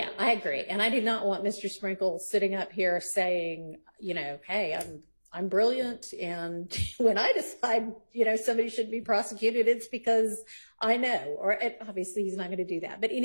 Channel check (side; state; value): both; inverted; correlation -1.00